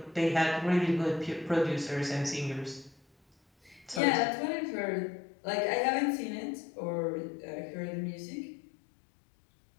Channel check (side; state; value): right; drops out; at 4.0 s